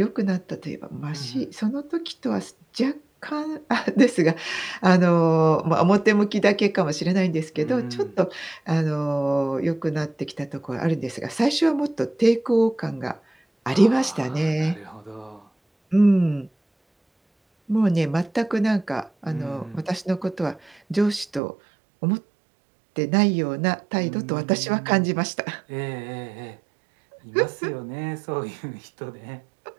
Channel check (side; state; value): left; drops out; at 21.4 s